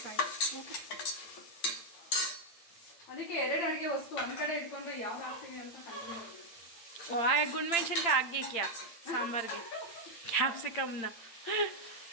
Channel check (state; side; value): late; right; 8.8 ms